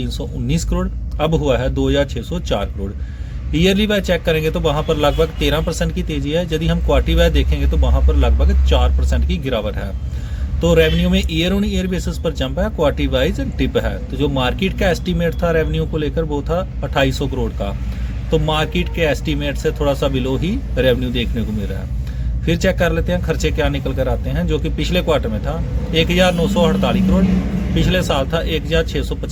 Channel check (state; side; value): identical; both; correlation 1.00